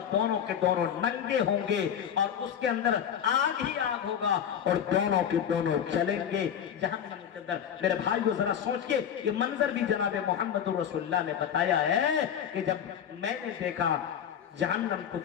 दोनों के दोनों नंगे होंगे और उसके अंदर आग ही आग होगा और दोनों के दोनों चलेंगे जहन्नम के अंदर। मेरे भाइयों जरा सोच के, ये मंजर भी जनाब मोहम्मद रसूलुल्लाह ने बताया है कि जब मैंने देखा जहन्नम को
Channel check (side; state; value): right; quieter; 8.9 dB